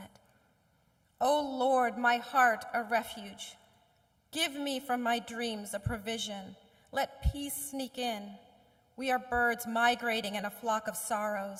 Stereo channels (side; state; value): both; identical; correlation 1.00